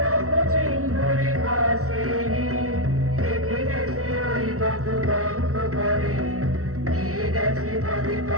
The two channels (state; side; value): late; left; 0.64 ms